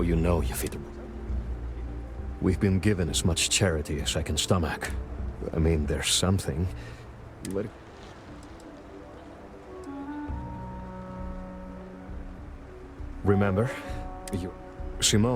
you know you fit. We've been given as much charity as I can stomach. I mean, there's something. But... Remember?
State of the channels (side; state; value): both; identical; correlation 1.00